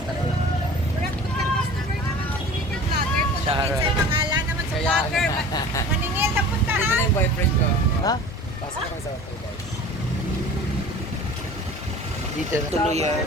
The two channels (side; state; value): both; normal; correlation 0.41